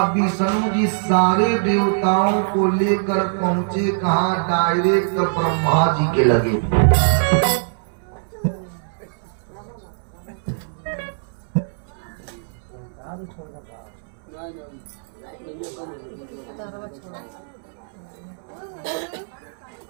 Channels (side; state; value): left; silent; 64 dB below the other